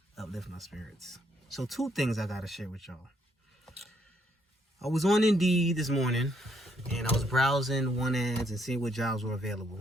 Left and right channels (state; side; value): normal; both; correlation 0.72